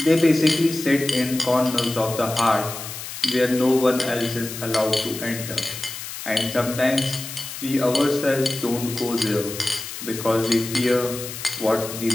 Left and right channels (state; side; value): noise; left; hiss, 9 dB below the sound